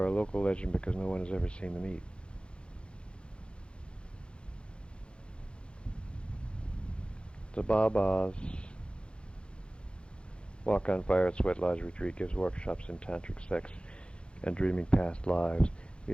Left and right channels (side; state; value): right; late; 0.056 ms